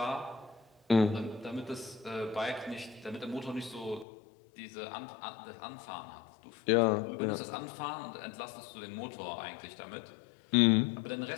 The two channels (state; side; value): drops out; right; at 4.0 s